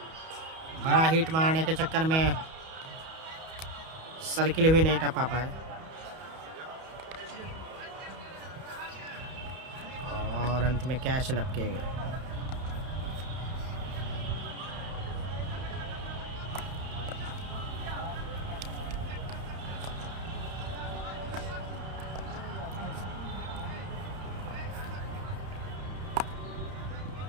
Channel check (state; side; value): late; left; 31 ms